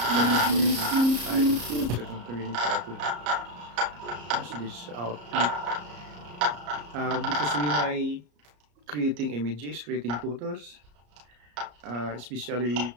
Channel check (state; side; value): late; left; 34 ms